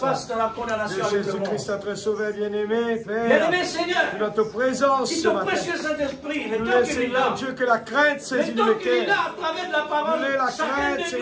dans la de condamnation avec le Jésus-Christ, monde. notre Sauveur bien-aimé, Père. Bien-aimé Seigneur, Notre présence qui ce ton matin. précieux Saint-Esprit, le Nous temps qu'il est Seigneur là, Dieu, que la crainte saisit le le temps qu'il est cœur. là à travers de la parole, Nous la chacun crainte, de nous,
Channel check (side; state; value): both; identical; correlation 1.00